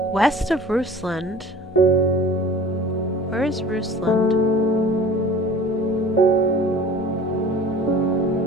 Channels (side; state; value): both; normal; correlation 0.43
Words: west of Rusland. Where is Rusland?